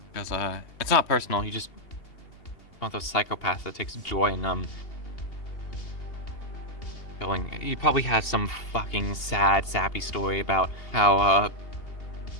Because it's not personal. You just one of those psychopaths that takes joy in handling. He probably has some fucking sad, sappy story about how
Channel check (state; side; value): late; right; 2.8 ms